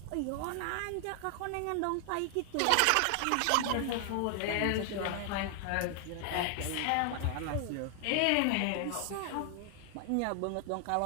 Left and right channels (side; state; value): both; different; correlation 0.00